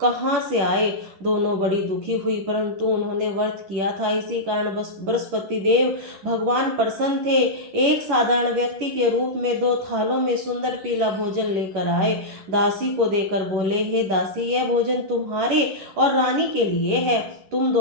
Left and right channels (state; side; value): late; left; 10 ms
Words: कहाँ से आए? दोनों बड़ी दुखी हुई, परंतु उन्होंने व्रत किया था, इसी कारण बृहस्पति देव भगवान प्रसन्न थे। एक साधारण व्यक्ति के रूप में 2 थालों में सुंदर पीला भोजन लेकर आए। दासी को देकर बोले, हे दासी, यह भोजन तुम्हारे और रानी के लिए है, तुम